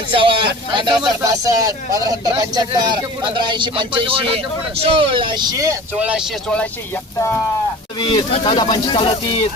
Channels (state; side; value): normal; both; correlation 0.40